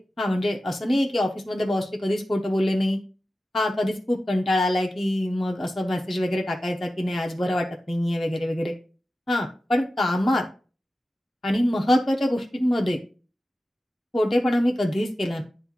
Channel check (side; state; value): both; normal; correlation 0.94